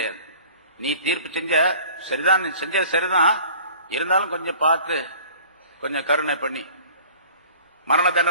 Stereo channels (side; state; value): both; inverted; correlation -0.47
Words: நீ தீர்ப்பு செஞ்ச சரிதான், நீ செஞ்சது சரிதான், இருந்தாலும் கொஞ்சம் பார்த்து கொஞ்சம் கருணை பண்ணி மரண